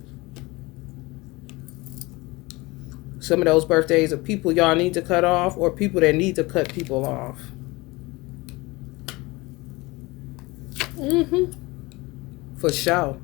Some of those birthdays are people y'all need to cut off or people that need to cut people off. For sure.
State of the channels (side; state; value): right; quieter; 22.9 dB